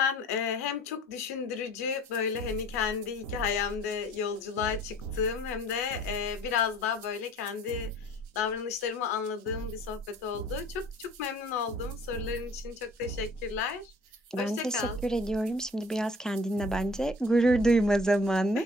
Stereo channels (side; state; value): both; normal; correlation 0.49